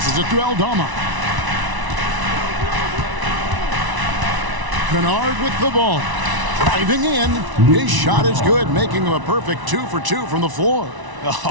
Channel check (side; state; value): left; late; 1.0 ms